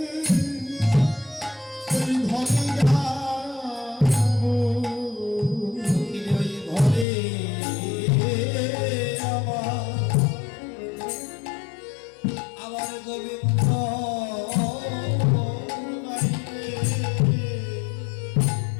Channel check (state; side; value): drops out; right; at 7.1 s